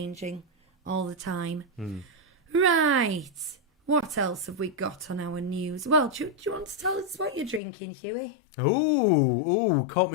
all the time. Right. What else have we got on our news? Well, do you want to tell us what you're drinking, Huey? Ooh, caught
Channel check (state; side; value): drops out; right; at 7.6 s